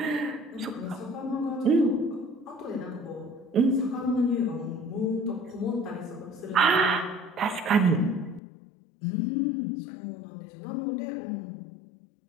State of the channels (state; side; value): drops out; right; at 8.4 s